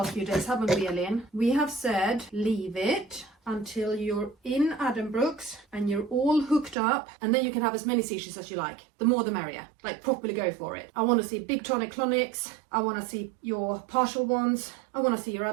few days, haven't we, Elin? We have said leave it until you're in Addenbrooke's and you're all hooked up, and then you can have as many seizures as you like. The more the merrier. Like, properly go for it. I want to see big tonic-clonics. I want to see your partial ones. I want to see your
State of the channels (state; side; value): drops out; left; at 6.8 s